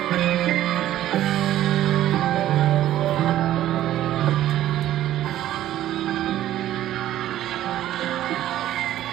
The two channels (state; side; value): quieter; left; 13.0 dB